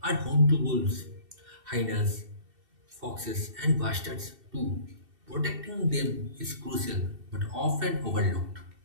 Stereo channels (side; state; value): left; late; 2.7 ms